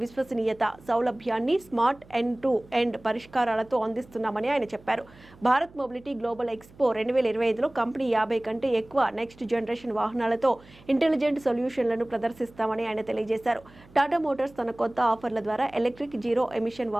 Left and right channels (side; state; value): right; noise; hum, 24 dB below the sound